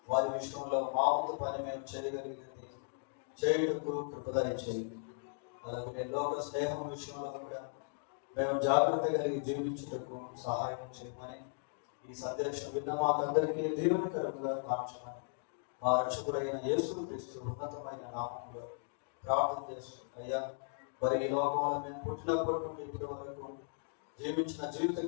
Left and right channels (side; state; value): right; silent; digital silence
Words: వారి విషయంలో మా వంతు పని మేము చేయగలిగింది చేయుటకు కృపదయ చేయండి. అలాగే లోక స్నేహం విషయంలో కూడా మేము జాగ్రత్త కలిగి జీవించుటకు సహాయం చేయమని ఈ సందేశం విన్న మాకందరికీ దీవెనకరంగా మార్చమని మా రక్షకుడైన యేసుక్రీస్తు ఉన్నతమైన నామములో ప్రార్థన చేస్తున్నాయ్యా. మరి ఈ లోకంలో మేము పుట్టినప్పటి నుండి ఇప్పటి వరకు జీవించిన జీవిత